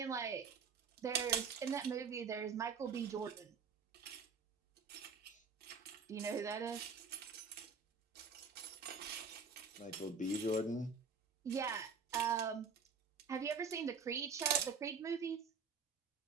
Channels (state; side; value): quieter; left; 5.5 dB